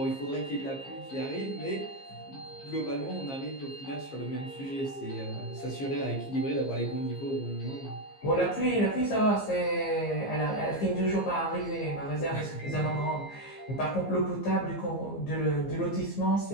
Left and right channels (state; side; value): late; right; 15 ms